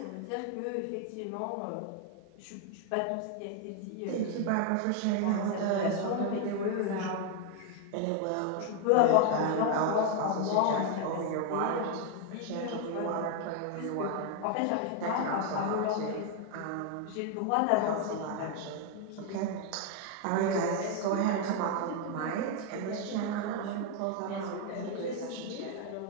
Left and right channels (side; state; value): both; different; correlation 0.01